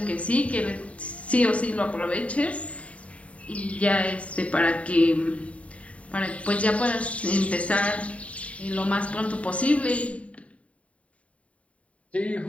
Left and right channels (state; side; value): late; right; 0.065 ms